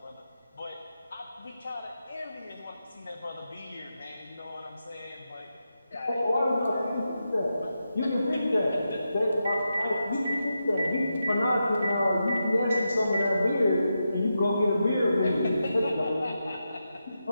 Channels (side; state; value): both; inverted; correlation -0.88